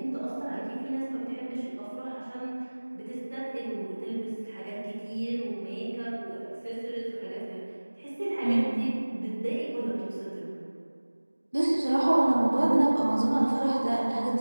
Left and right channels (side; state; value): both; inverted; correlation -1.00